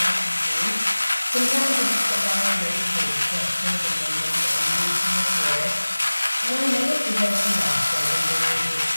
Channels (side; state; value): both; inverted; correlation -1.00